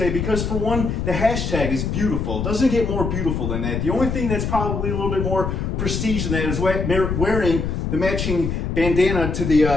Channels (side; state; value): left; noise; rumble, 2 dB below the sound